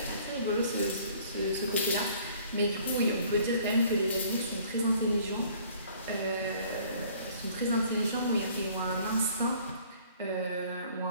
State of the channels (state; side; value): inverted; both; correlation -0.55